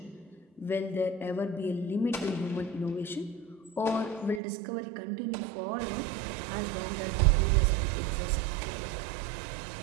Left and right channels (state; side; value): drops out; left; at 4.4 s